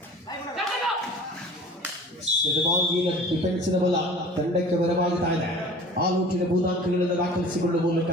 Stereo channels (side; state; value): both; normal; correlation 0.43